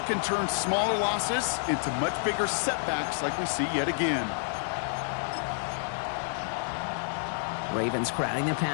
can turn smaller losses into much bigger setbacks like we see yet again. Ravens crowding their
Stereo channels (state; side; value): silent; right; 58 dB below the other